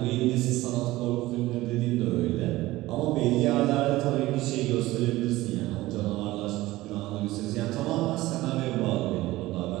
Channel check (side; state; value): left; quieter; 17.9 dB